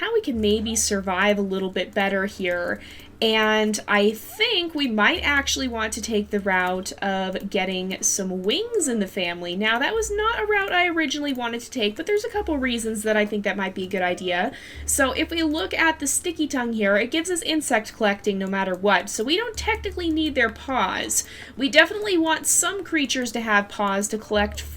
we can maybe survive a little bit better here. And I think we might actually want to take the route of getting some wings in the family. Now, that was not a route I originally wanted to take, but there's a couple reasons that I think that might be a good idea. So if we look at the sticky tongue here, it gives us insect collecting no matter what. So we don't technically need their paws. We definitely want some creatures to have paws to collect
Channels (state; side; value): identical; both; correlation 1.00